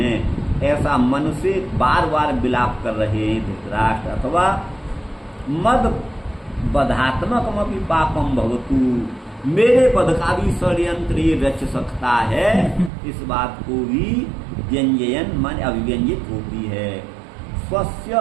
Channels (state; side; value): drops out; left; at 12.9 s